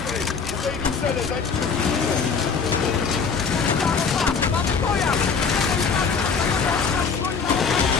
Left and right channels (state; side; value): quieter; right; 5.6 dB